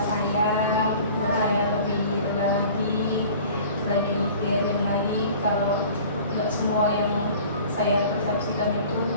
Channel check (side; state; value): both; inverted; correlation -0.46